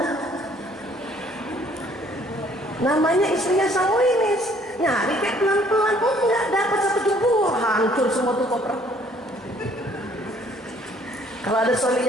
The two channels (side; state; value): both; normal; correlation 0.61